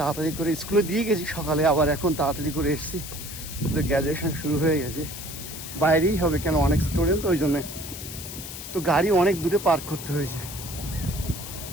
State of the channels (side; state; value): left; noise; hiss, 10 dB below the sound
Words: তাড়াতাড়ি করে স্কুলে দিয়ে গেছি সকালে, আবার এখন তাড়াতাড়ি করে এসেছি। ওদের গ্র্যাজুয়েশন শুরু হয়ে গেছে, বাইরেই হবে কেন অনেক স্টুডেন্ট, ওই জন্যে তো গাড়ি অনেক দূরে পার্ক করতে হয়েছে।